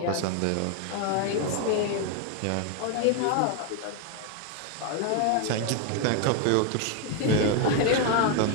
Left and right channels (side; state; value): both; different; correlation 0.01